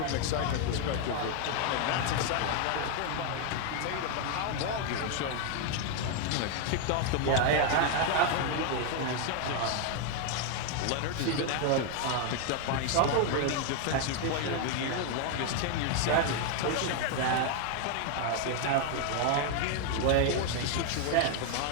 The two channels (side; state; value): both; different; correlation 0.01